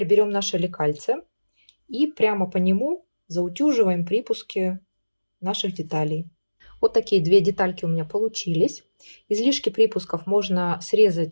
берем наше лекальце и прямо по нему заутюживаем припуски наших деталей. Вот такие две детальки у меня получились. Излишки припусков можно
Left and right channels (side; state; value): both; inverted; correlation -1.00